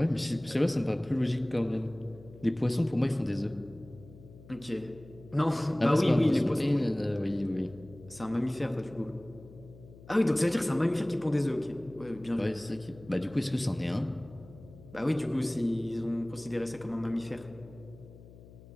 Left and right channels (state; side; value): noise; left; hum, 20 dB below the sound